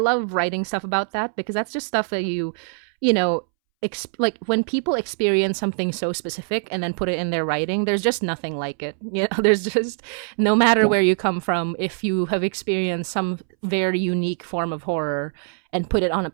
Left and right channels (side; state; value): left; silent; 63 dB below the other